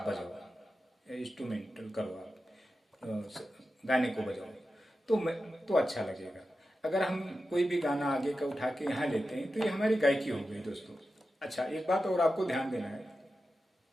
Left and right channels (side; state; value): both; normal; correlation 0.91